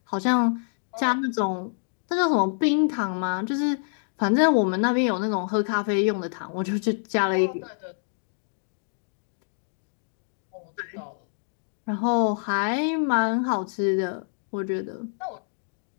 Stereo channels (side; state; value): right; silent; digital silence